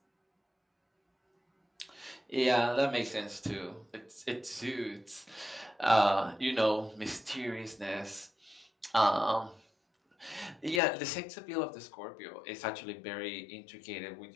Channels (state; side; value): drops out; right; at 10.8 s